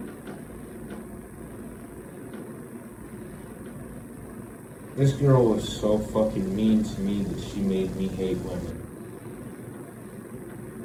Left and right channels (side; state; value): both; identical; correlation 1.00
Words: This girl was so fucking mean to me that she made me hate women.